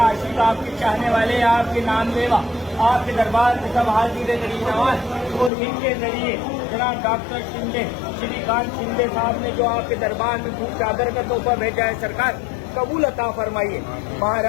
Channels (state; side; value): drops out; right; at 5.5 s